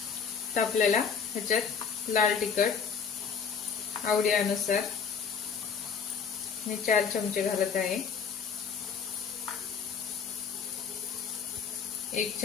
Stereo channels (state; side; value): quieter; right; 6.3 dB